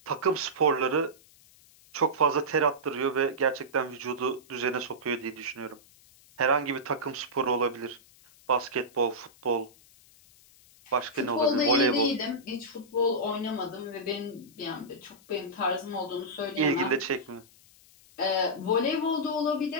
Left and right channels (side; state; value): left; noise; hiss, 26 dB below the sound